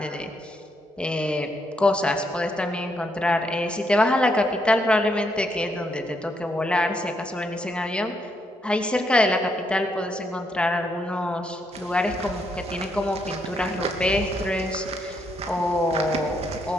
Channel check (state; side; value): normal; both; correlation 0.76